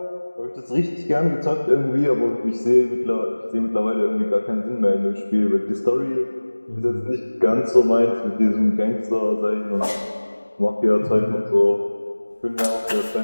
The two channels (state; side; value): inverted; both; correlation -1.00